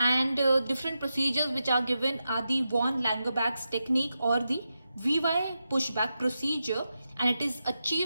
different procedures which are given are the von Langerback's technique or the VY pushback procedure, and it is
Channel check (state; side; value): inverted; both; correlation -0.89